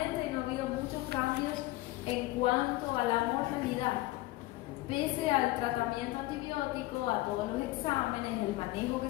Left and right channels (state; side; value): quieter; right; 18.7 dB